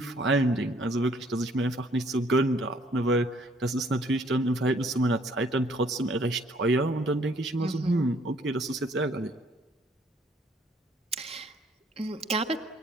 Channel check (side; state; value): both; normal; correlation 0.63